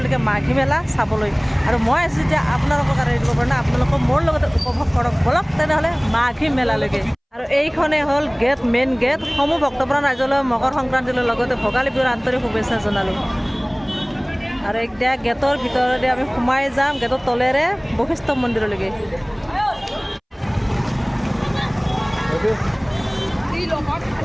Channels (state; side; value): identical; both; correlation 1.00